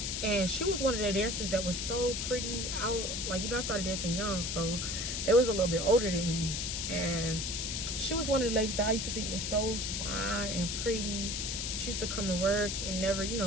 and she was one of the dancers that was so pretty. I started dancing young, so they was a little bit older than me, and she was one of the ladies that I used to think was so fine and pretty. She used to come to work and never, you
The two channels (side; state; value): left; noise; hiss, 2 dB below the sound